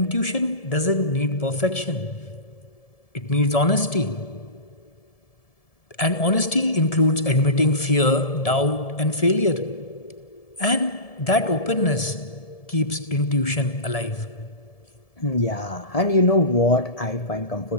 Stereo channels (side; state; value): right; late; 1.7 ms